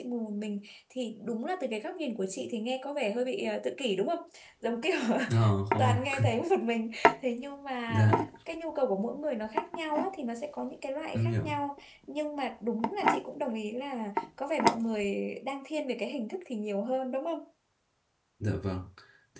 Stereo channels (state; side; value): identical; both; correlation 1.00